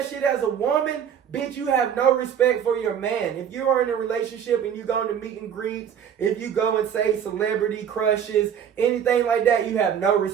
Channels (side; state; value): left; quieter; 8.6 dB